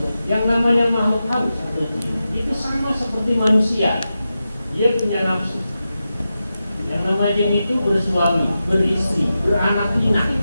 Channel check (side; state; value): both; inverted; correlation -0.91